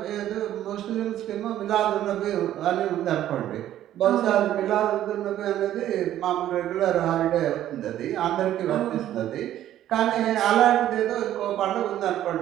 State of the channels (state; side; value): quieter; left; 12.3 dB